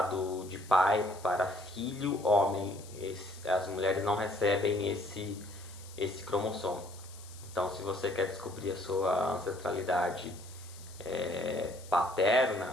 de pai para filho homem. As mulheres não recebem esse cromossomo. Então, se você quer descobrir a sua ancestralidade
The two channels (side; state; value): left; noise; hiss, 19 dB below the sound